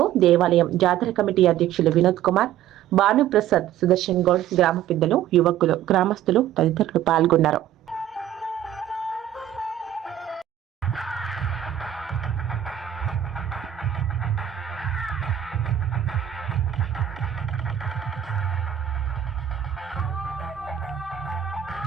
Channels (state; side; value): quieter; left; 11.1 dB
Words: దేవాలయం జాతర కమిటీ అధ్యక్షులు వినోద్ కుమార్, భానుప్రసాద్, సుదర్శన్ గౌడ్, గ్రామ పెద్దలు, యువకులు, గ్రామస్తులు తదితరులు పాల్గొన్నారు.